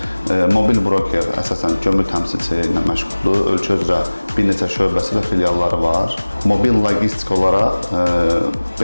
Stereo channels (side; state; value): both; inverted; correlation -1.00